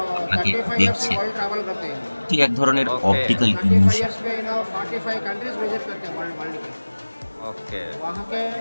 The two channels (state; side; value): inverted; both; correlation -1.00